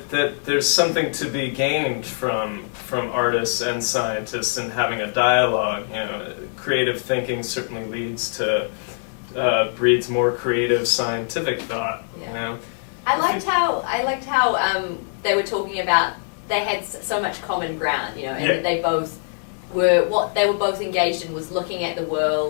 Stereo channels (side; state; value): right; silent; 63 dB below the other